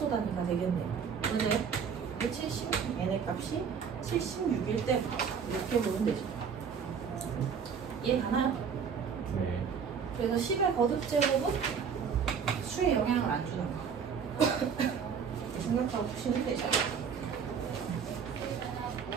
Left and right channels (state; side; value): quieter; left; 6.7 dB